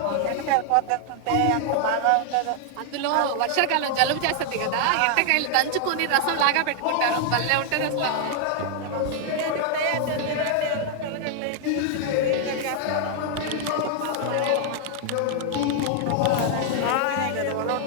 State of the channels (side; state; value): both; different; correlation 0.00